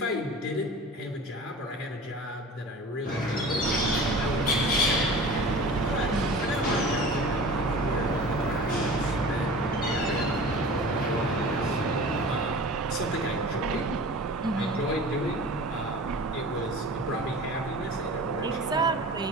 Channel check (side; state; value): both; normal; correlation 0.38